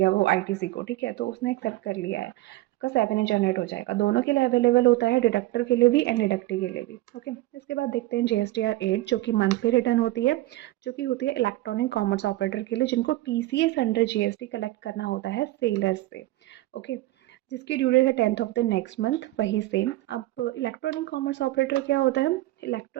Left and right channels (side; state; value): left; quieter; 17.5 dB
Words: वो ITC को। ठीक है, तो उसने एक्सेप्ट कर लिया है, आपका 7A जनरेट हो जाएगा। दोनों के लिए अवेलेबल होता है, डिडक्टर के लिए भी एंड डिडक्टी के लिए भी। ओके, इसके बाद देखते हैं GSTR 8 जो कि मंथली रिटर्न होती है, जो कि होती है इलेक्ट्रॉनिक कॉमर्स ऑपरेटर के लिए जिनको TCS अंडर GST कलेक्ट करना होता है सेलर्स से। ओके, जिसकी ड्यू डेट है 10th of the next month, वही सेम। अब इलेक्ट्रॉनिक कॉमर्स ऑपरेटर क्या होता है?